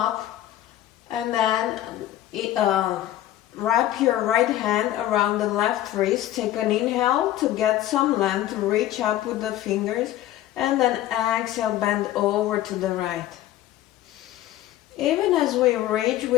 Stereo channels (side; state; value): right; quieter; 13.6 dB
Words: and then wrap your right hand around the left wrist. Take an inhale to get some length, reach up with the fingers, and then exhale, bend over to the right. Even as we reach